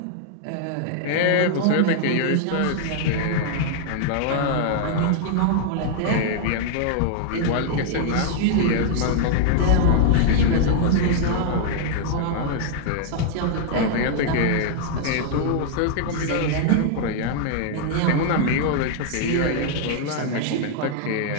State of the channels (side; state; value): both; different; correlation 0.00